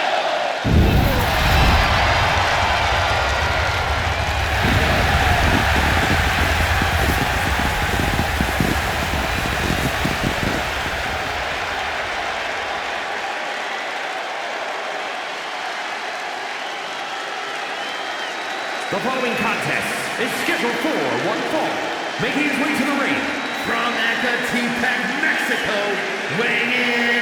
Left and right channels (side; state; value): both; identical; correlation 1.00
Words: The following contest is scheduled for one fall. Making his way to the ring from Ecatepec, Mexico, weighing